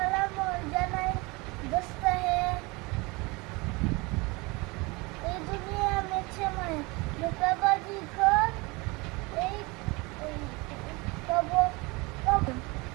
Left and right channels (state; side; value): quieter; left; 25.6 dB